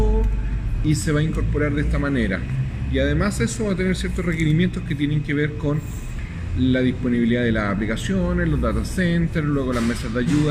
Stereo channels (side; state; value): both; identical; correlation 1.00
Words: y se va a incorporar de esta manera. Y además eso va a tener ciertos requerimientos que tienen que ver con la disponibilidad de las aplicaciones, los data centers, luego las mesas de